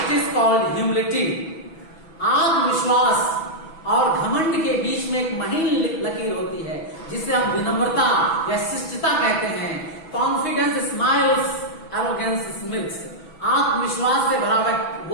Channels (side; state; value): right; late; 6.1 ms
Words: is called humility. आत्मविश्वास और घमंड के बीच में एक महीन लकीर होती है जिसे हम विनम्रता या शिष्टता कहते हैं. Confidence smiles, arrogance smiles. आत्मविश्वास से भरा